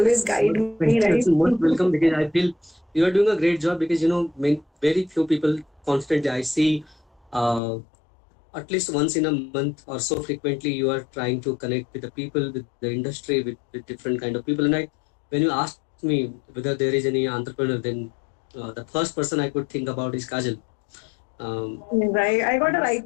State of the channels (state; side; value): drops out; right; at 7.6 s